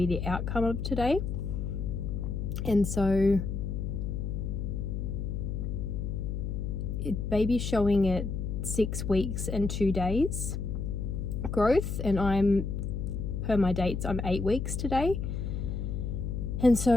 the outcome of today. And so baby's showing at 6 weeks and 2 days growth, and I'm, per my dates, I'm 8 weeks today. And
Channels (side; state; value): left; noise; hum, 3 dB below the sound